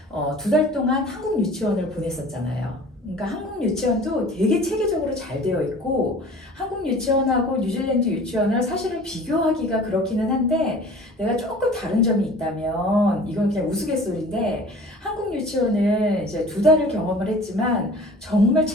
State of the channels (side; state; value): both; normal; correlation 0.45